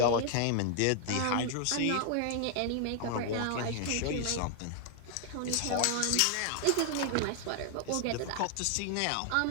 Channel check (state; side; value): different; both; correlation 0.00